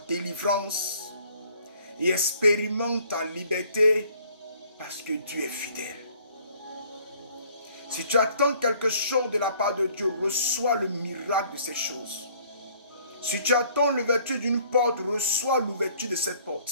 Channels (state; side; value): inverted; both; correlation -0.58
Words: délivrance. Et expérimente ta liberté parce que Dieu est fidèle. Si tu attends quelque chose de la part de Dieu, reçois le miracle de ces choses. Si tu attends l'ouverture d'une porte, reçois l'ouverture de cette